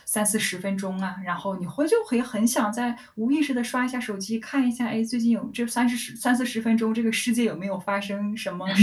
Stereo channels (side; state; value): both; identical; correlation 1.00